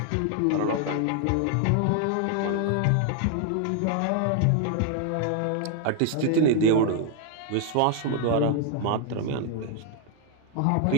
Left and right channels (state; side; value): different; both; correlation 0.00